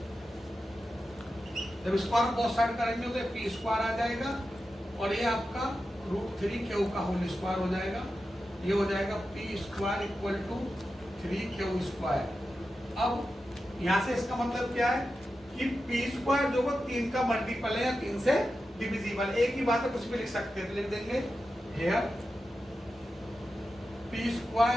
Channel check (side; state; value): both; normal; correlation 0.91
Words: जब स्क्वायर ऑफ बोथ साइड करेंगे तो P स्क्वायर आ जाएगा, और ये आपका √3Q का होल स्क्वायर हो जाएगा। ये हो जाएगा P square equal to 3Q square. अब यहां से इसका मतलब क्या है कि P स्क्वायर जो वो 3 का मल्टीपल है या 3 से डिविजिबल। एक ही बात है, कुछ भी लिख सकते हैं, तो लिख देंगे here P